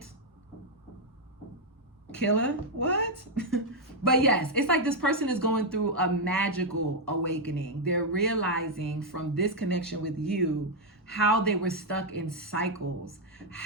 killer. What? But yes, it's like this person is going through a magical awakening. They're realizing from this connection with you how they were stuck in cycles,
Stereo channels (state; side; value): normal; both; correlation 0.00